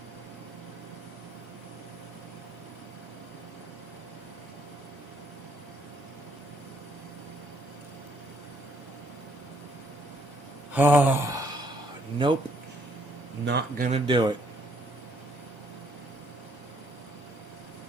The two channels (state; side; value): normal; both; correlation 0.66